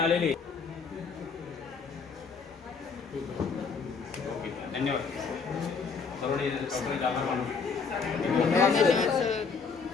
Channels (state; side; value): quieter; right; 5.3 dB